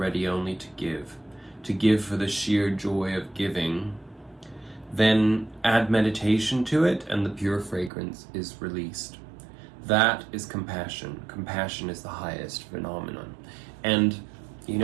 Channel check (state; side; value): drops out; left; at 7.9 s